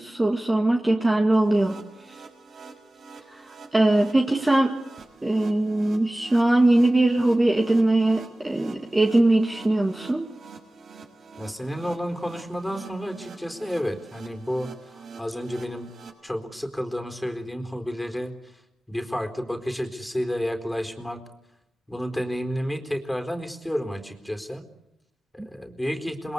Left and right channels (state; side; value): normal; both; correlation 0.97